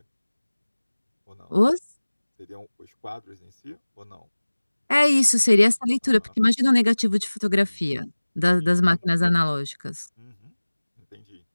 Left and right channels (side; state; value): both; inverted; correlation -1.00